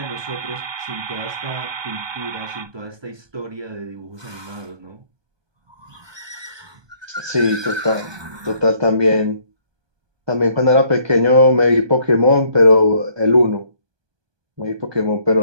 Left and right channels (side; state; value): left; late; 1.2 ms